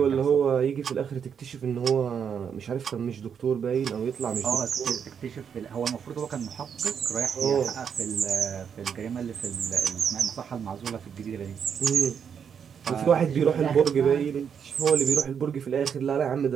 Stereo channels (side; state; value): left; quieter; 7.4 dB